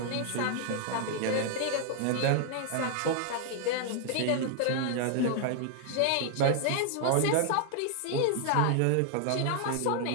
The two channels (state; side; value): different; both; correlation 0.00